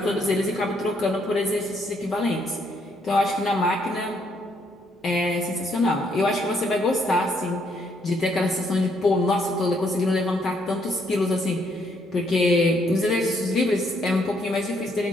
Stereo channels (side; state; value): both; normal; correlation 0.71